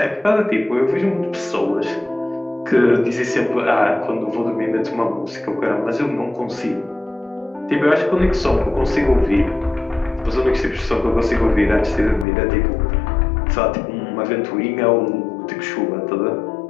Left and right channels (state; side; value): drops out; right; at 12.2 s